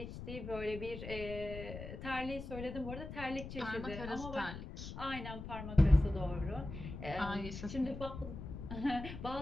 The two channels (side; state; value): left; noise; rumble, 9 dB below the sound